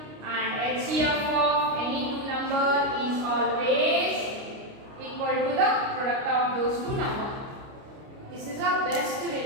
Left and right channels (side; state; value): left; late; 29 ms